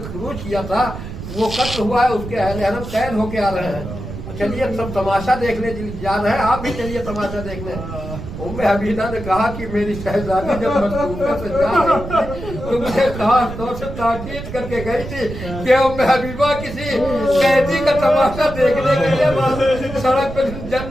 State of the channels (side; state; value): right; noise; rumble, 9 dB below the sound